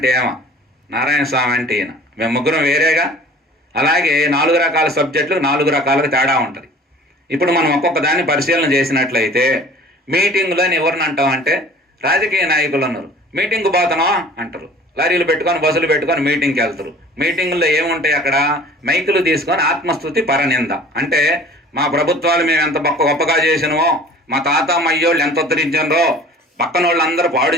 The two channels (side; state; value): both; normal; correlation 0.47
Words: ఏమ, నారాయణ స్వామి అంటే ఈయన, మేము ముగ్గురం వేరేగా. అలాగే 4 రకాల సబ్జెక్టులు 4 రకాలుగా తేడా ఉంటుంది. ఇప్పుడు మనం ఒక్కొక్క దాన్ని పరిశీలన చేసినట్లయితే మీటింగులని ఎవరిని అంటామంటే రాజకీయ నాయకులు అన్నారు. మీటింగ్కి పోతున్నావా అంటారు, లారీలు పెట్టుకొని బస్సులు పెట్టుకొని మీటింగ్కి వెళ్తారు. మీటింగుల్లో ఏముంటాయి అక్కడ? మైకులు తీసుకొని ఆత్మస్తుతి పరనింద. అంటే మా ప్రభుత్వాలు మేము ఎంత గొప్పగా చేసినవో, మా తాత అయ్యోళ్ళు ఎంత ఉద్ధరించారో, పక్కన వాళ్ళు అందరూ పాడు